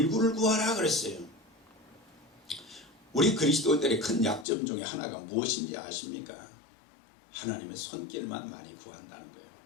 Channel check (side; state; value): right; drops out; at 4.5 s